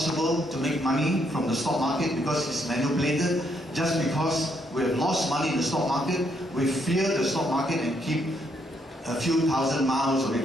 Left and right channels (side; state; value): both; normal; correlation 0.74